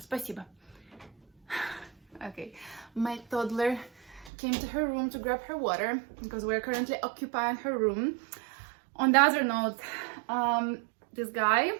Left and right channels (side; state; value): left; drops out; at 4.3 s